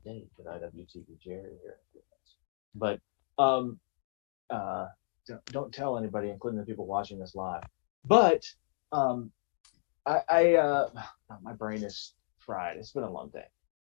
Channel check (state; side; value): silent; right; digital silence